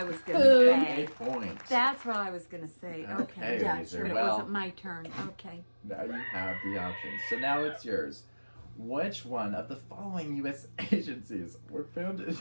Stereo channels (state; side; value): inverted; both; correlation -1.00